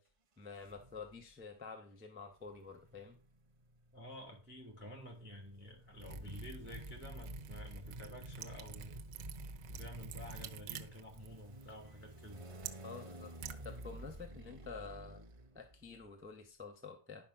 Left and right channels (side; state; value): left; late; 1.9 ms